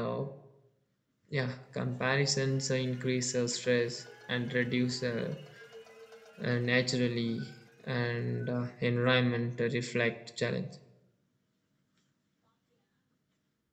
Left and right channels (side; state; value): both; identical; correlation 1.00